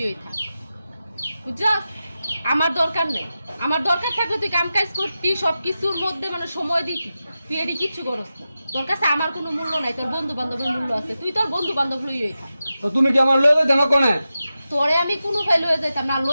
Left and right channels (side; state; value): both; inverted; correlation -0.92